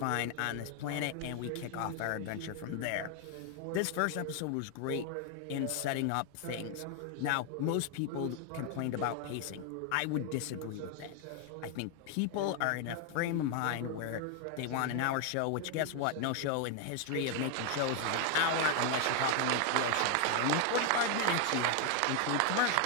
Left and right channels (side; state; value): both; different; correlation 0.01